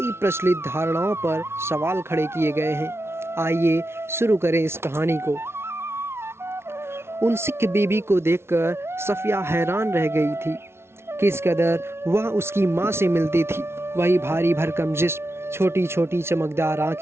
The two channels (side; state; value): left; late; 0.12 ms